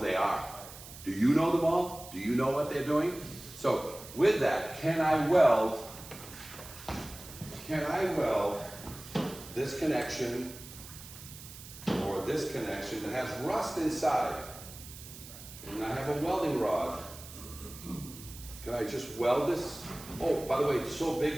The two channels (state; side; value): noise; right; hiss, 15 dB below the sound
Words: are. Do you know them all? Do you know what they're doing? So with that, can I weld this connection or this connection that has rust inside? And I have a welding rod. Can I just weld this? Oh, by the way, it's so